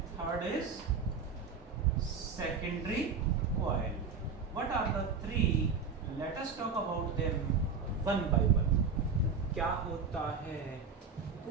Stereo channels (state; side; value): quieter; left; 5.2 dB